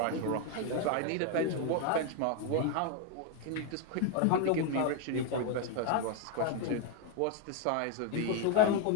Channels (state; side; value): different; both; correlation 0.01